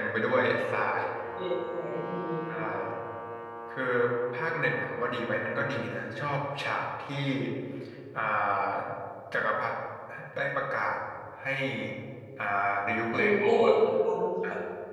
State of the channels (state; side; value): identical; both; correlation 1.00